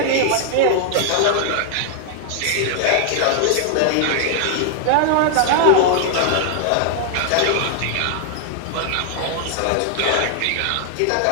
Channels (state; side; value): different; both; correlation 0.00